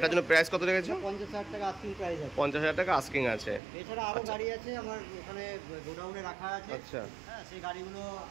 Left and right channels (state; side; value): drops out; left; at 3.6 s